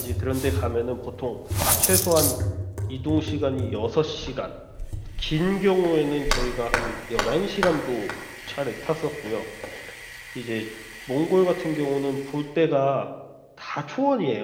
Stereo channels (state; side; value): identical; both; correlation 1.00